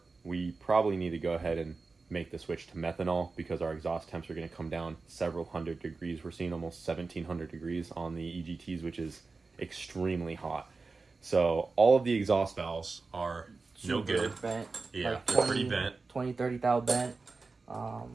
we probably need to go ahead and make the switch to methanol, because our exhaust temps are going to come down several hundred degrees. We're seeing almost 1,700 degrees on the EGTs, which is extremely hot. So all of the exhaust valves are no good. Bent. Yeah, like they're pretty bent. 20, 30 thou bent.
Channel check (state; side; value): quieter; left; 4.0 dB